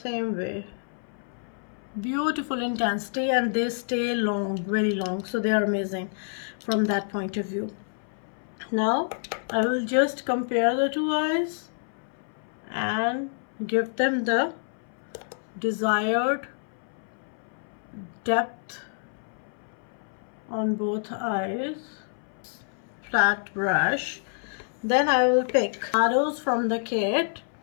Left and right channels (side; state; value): right; silent; 60 dB below the other